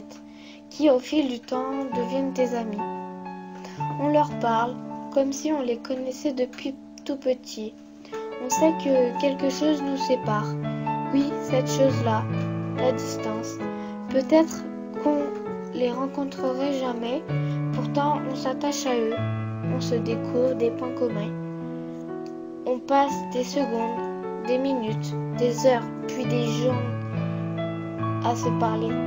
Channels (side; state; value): both; identical; correlation 1.00